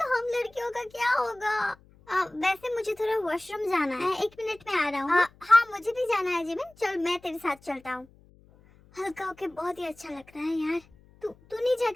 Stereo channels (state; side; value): noise; left; hum, 27 dB below the sound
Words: हम लड़कियों का क्या होगा? वैसे मुझे थोड़ा वॉशरूम जाना है, 1 मिनट में आ रहा हूँ। हाँ मुझे भी जाना है जिमिन, चल मैं तेरे साथ चलता हूँ। हल्का होके बहुत ही अच्छा लग रहा है यार। तू नहीं